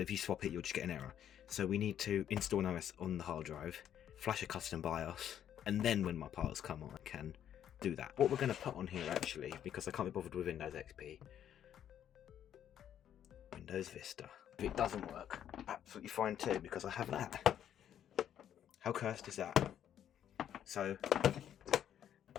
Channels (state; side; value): quieter; right; 10.0 dB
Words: you swap it you'll just get an error. So we need to install an OS on the hard drive, flash a custom BIOS, and then when my parts come on I can do that. What we're going to put on here actually, because I can't be bothered with Windows XP, Windows Vista. If it doesn't work, absolutely fine too, because I have that. How cursed is that? So